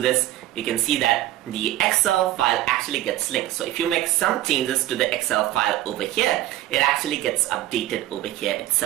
you can see that the Excel file actually gets linked. So if you make some changes to the Excel file over here, it actually gets updated over here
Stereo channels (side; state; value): left; quieter; 14.4 dB